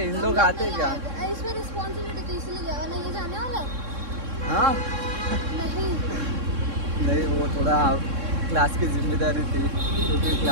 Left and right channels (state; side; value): late; left; 3.6 ms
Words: इन लोग आते क्या? इसमें रिस्पॉन्सिबिलिटी तो इसलिए गया ना, ये जाने वाला है. हाँ नहीं वो थोड़ा क्लास की जिम्मेदारी थी क्योंकि